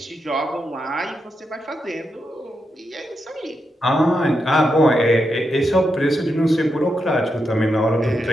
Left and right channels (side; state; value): both; normal; correlation 0.85